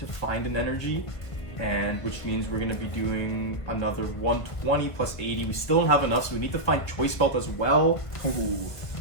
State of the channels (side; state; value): right; late; 1.5 ms